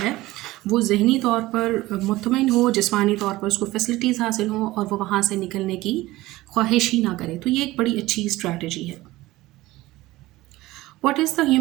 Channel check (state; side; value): quieter; left; 18.2 dB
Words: ہے وہ ذہنی طور پر مطمئن ہو، جسمانی طور پر اس کو فیسلٹیز حاصل ہوں اور وہ وہاں سے نکلنے کی خواہش ہی نہ کرے. تو یہ ایک بڑی اچھی اسٹریٹجی ہے. What is the